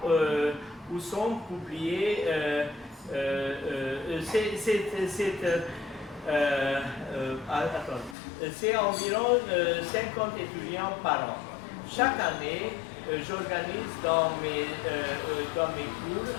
où sont publiés c'est environ 50 étudiants par an. Chaque année, j'organise dans mes cours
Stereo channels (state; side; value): drops out; right; at 8.2 s